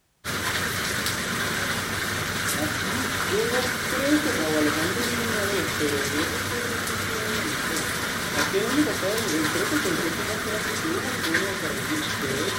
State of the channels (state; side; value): identical; both; correlation 1.00